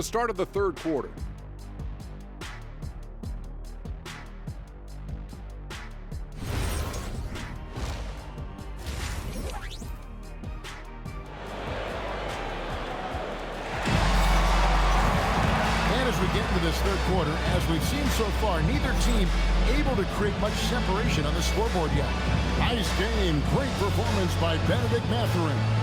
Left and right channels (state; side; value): identical; both; correlation 1.00